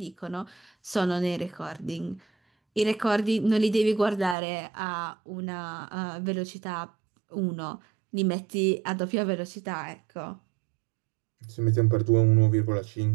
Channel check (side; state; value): left; drops out; at 4.4 s